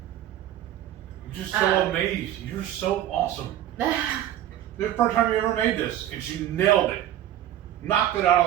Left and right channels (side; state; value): left; quieter; 12.1 dB